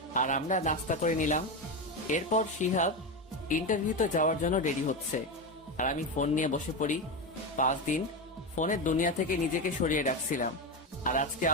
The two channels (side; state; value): both; normal; correlation 0.15